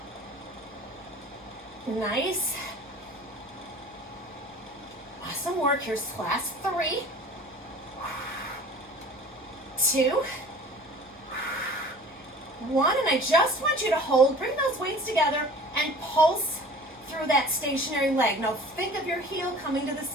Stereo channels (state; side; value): noise; left; hum, 28 dB below the sound